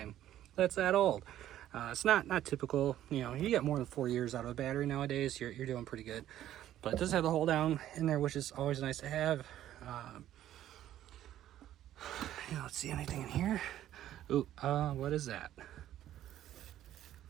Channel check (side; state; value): left; quieter; 12.4 dB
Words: That's that old. It's not typical. You know, you get more than 4 years out of a battery nowadays, you're doing pretty good. But it does have the hold down in there, which is always nice to have. Let's see, anything in here? Ooh, what is that?